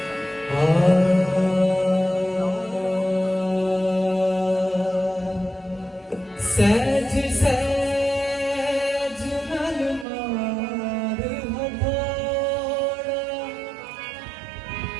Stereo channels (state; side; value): drops out; left; at 10.1 s